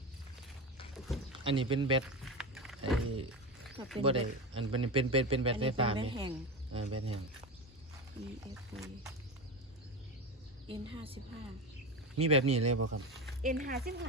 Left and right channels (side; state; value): both; normal; correlation 0.21